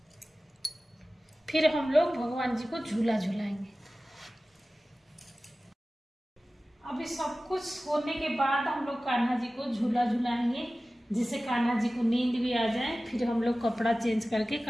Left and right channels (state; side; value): normal; both; correlation 0.96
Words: फिर हम लोग भगवान जी को झूला झूलाएंगे। अभी सब कुछ होने के बाद हम लोग कान्हा जी को झूला झूलाएंगे, जिससे कान्हा जी को नींद भी आ जाए। फिर हम लोग कपड़ा चेंज करके